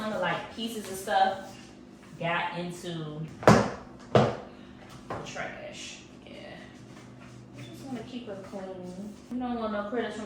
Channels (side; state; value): both; identical; correlation 1.00